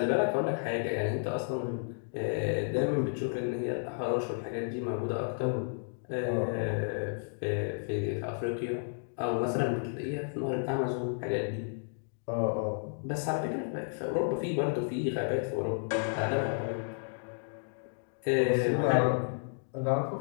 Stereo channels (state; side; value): silent; right; digital silence